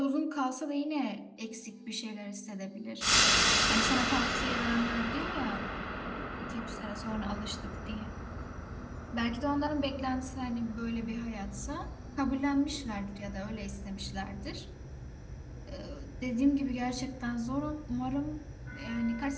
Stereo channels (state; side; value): identical; both; correlation 1.00